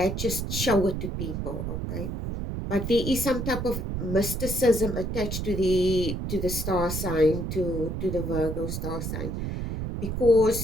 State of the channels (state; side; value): noise; right; rumble, 4 dB below the sound